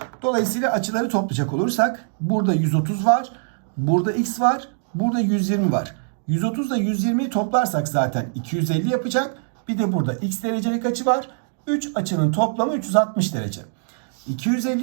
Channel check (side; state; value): left; silent; digital silence